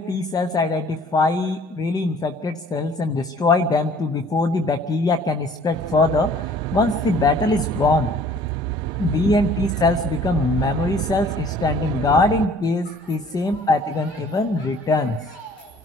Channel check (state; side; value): normal; both; correlation 0.53